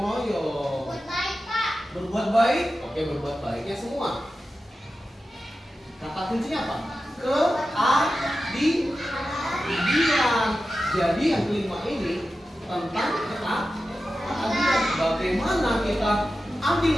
royong. Berbuat baik, oke, berbuat baiknya semua. Kata kuncinya apa? Keadilan. Jadi yang kelima ini tentang keadilan. Bagaimana kita adil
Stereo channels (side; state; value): both; normal; correlation 0.92